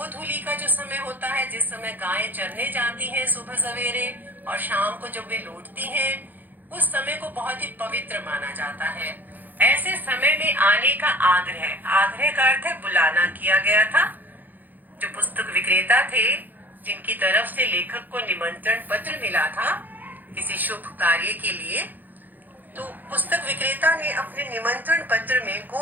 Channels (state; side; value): late; left; 0.085 ms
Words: का जो समय होता है, जिस समय गायें चरने जाती हैं सुबह सवेरे और शाम को जब वे लौटती हैं, उस समय को बहुत ही पवित्र माना जाता है। ऐसे समय में आने का आग्रह, आग्रह का अर्थ है बुलाना, किया गया था। जो पुस्तक विक्रेता थे, जिनकी तरफ से लेखक को निमंत्रण पत्र मिला था किसी शुभ कार्य के लिए, तो पुस्तक विक्रेता ने अपने निमंत्रण पत्र में